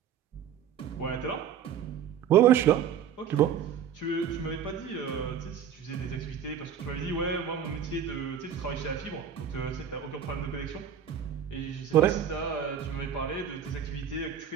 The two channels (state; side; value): quieter; left; 8.5 dB